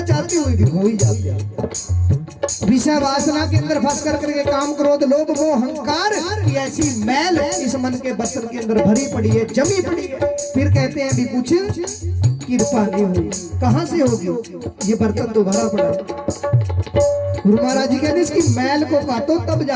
चाहते हुए भी हो ही जाते हैं। विषय वासना के अंदर फंस कर करके काम क्रोध लोभ मोह अहंकार की ऐसी मैल इस मन के बर्तन के अंदर भरी पड़ी है, जमी पड़ी है। फिर कहते हैं भी कुछ कृपा नहीं हुई। कहां से होगी? ये बर्तन तो भरा पड़ा है। गुरु महाराज जी कहते इसकी मैल को काटो तब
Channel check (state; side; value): identical; both; correlation 1.00